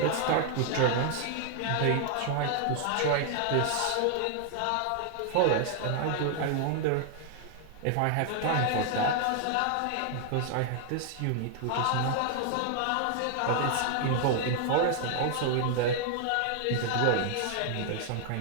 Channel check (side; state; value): both; different; correlation 0.00